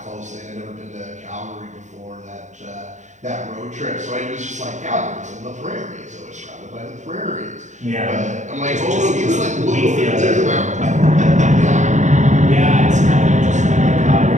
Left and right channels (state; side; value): late; left; 0.35 ms